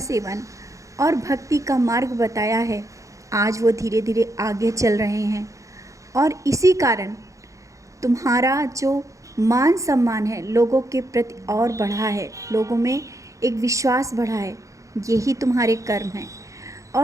और भक्ति का मार्ग बताया है, आज वो धीरे धीरे आगे चल रहे हैं, और इसी कारण तुम्हारा जो मान सम्मान है लोगों के प्रति और बढ़ा है, लोगों में एक विश्वास बढ़ा है। यही तुम्हारे कर्म हैं।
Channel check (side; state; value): left; late; 0.15 ms